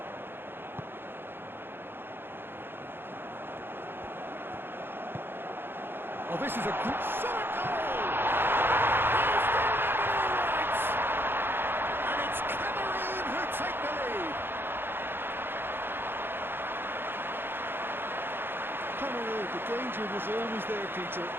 Oh, this is a good shot goal! He's delivered all right! And it's Cameroon who take the lead. Cameroon, the danger was always there, Peter.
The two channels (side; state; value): left; late; 0.10 ms